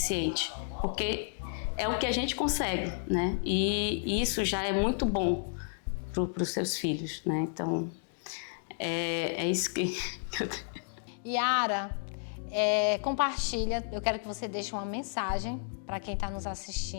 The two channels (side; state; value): right; silent; digital silence